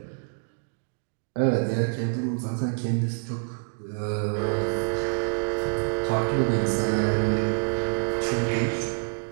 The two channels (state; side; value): silent; left; digital silence